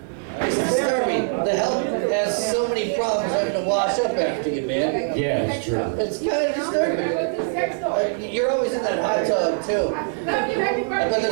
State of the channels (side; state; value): left; silent; digital silence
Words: It's disturbing. The help has so many problems having to wash up after you, man. Yeah, it's true. It's kind of disturbing. You're always in that hot tub too. I bet